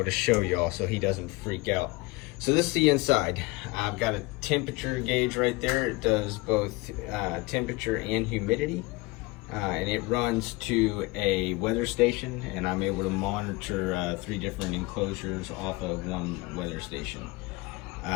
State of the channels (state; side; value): quieter; right; 23.3 dB